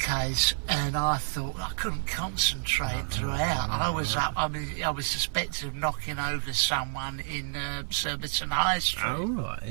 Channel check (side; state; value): left; silent; 58 dB below the other